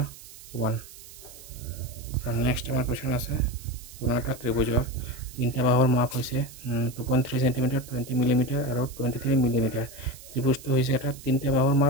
নেক্সট আমাৰ কোৱেশ্যন আছে কোনো এটা ত্ৰিভুজৰ তিনিটা বাহুৰ মাপ হৈছে 2.3 cm 20 mm আৰু 23 mm ত্ৰিভুজটো হৈছে এটা তিনিটা বাহুৰ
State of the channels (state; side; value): noise; right; hiss, 17 dB below the sound